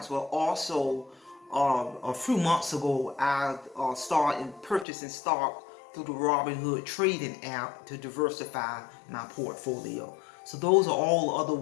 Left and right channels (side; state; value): right; drops out; at 4.9 s